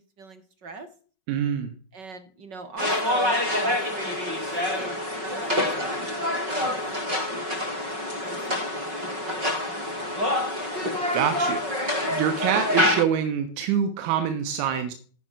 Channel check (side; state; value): left; late; 5.4 ms